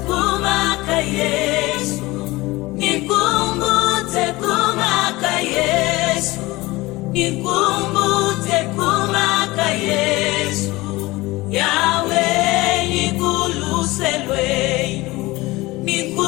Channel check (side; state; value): right; quieter; 20.6 dB